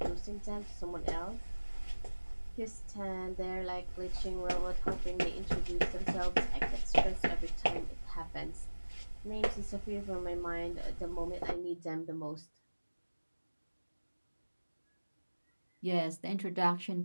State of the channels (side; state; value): both; inverted; correlation -1.00